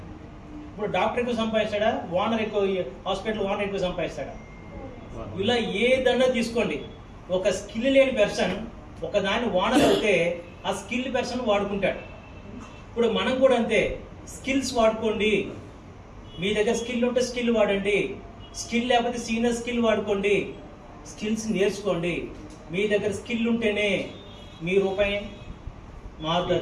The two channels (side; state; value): both; identical; correlation 1.00